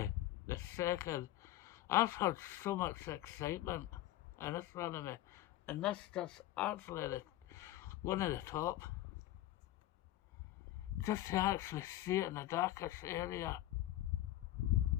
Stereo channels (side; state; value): right; quieter; 14.7 dB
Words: the second. I've had so much excitement in astronomy, and this just actually one of the top. Just to actually see it in the darkest area.